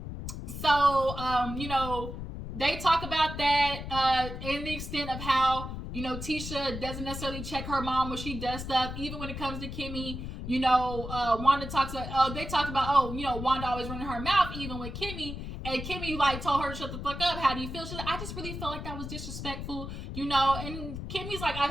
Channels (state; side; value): noise; left; rumble, 7 dB below the sound